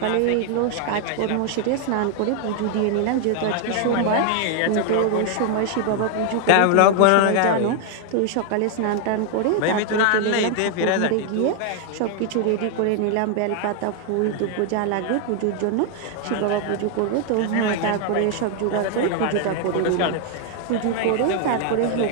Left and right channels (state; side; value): different; both; correlation 0.00